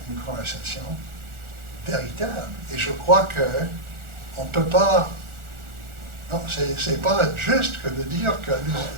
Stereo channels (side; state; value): left; late; 1.4 ms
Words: une conversation véritable. Et je crois qu'on ne peut pas. Non, c'est pas juste que de dire que